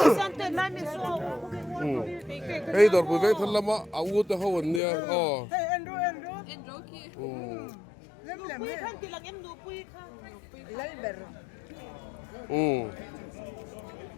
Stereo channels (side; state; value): right; drops out; at 4.8 s